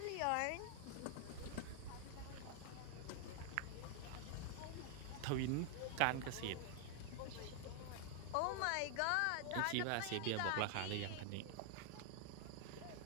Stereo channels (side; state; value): both; different; correlation 0.00